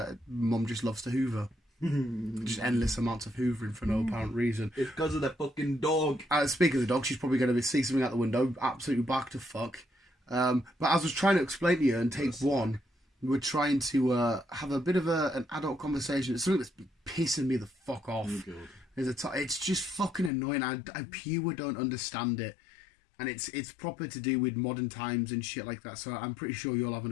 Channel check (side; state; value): right; drops out; at 20.3 s